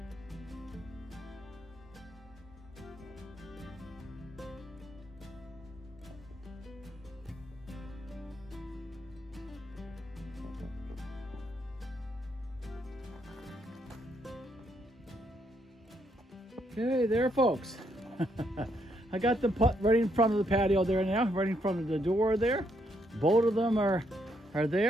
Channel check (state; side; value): normal; both; correlation 0.75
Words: Okay, there, folks. I got them put right in front of the patio there now, right in front of the door there. Both of them are